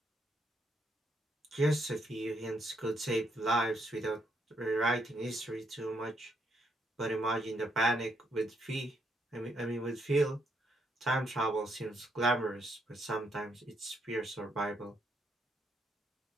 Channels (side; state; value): both; normal; correlation 0.75